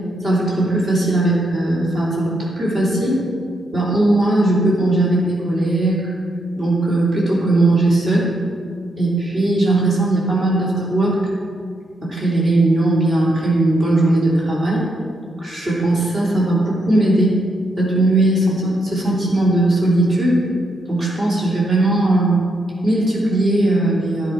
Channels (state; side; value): normal; both; correlation 0.78